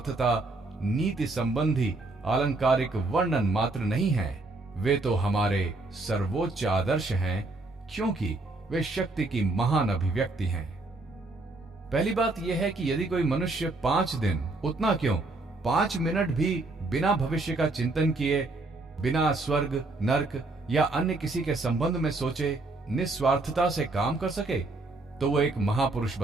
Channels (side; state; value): left; quieter; 3.2 dB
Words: नीति संबंधी आलंकारिक वर्णन मात्र नहीं है, वे तो हमारे सर्वोच्च आदर्श हैं, क्योंकि वे शक्ति की महान अभिव्यक्ति हैं। पहली बात यह है कि यदि कोई मनुष्य 5 दिन, उतना क्यों 5 मिनट भी बिना भविष्य का चिंतन किए, बिना स्वर्ग, नर्क या अन्य किसी के संबंध में सोचे निस्वार्थता से काम कर सके तो वो एक महापुरुष